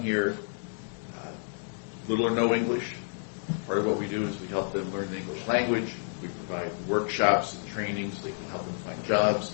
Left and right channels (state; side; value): silent; right; digital silence